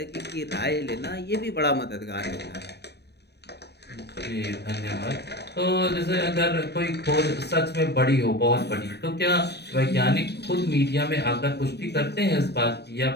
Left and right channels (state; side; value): late; right; 0.48 ms